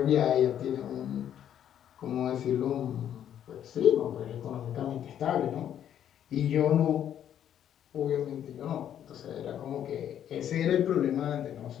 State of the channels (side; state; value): right; quieter; 10.1 dB